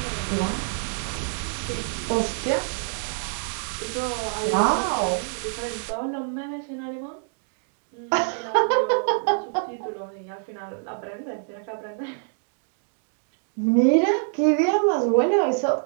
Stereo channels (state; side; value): silent; left; 61 dB below the other